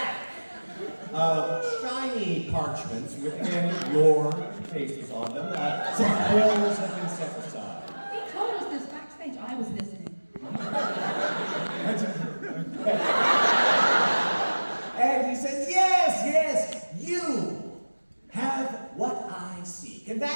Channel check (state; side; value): inverted; both; correlation -1.00